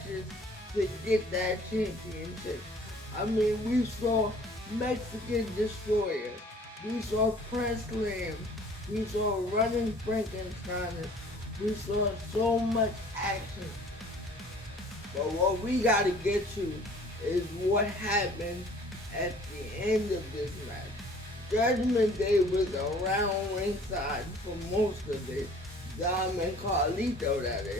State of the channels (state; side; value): normal; both; correlation 0.52